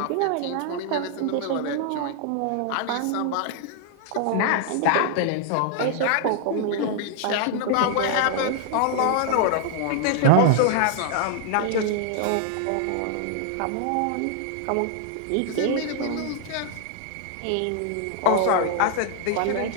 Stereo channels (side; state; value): both; different; correlation 0.00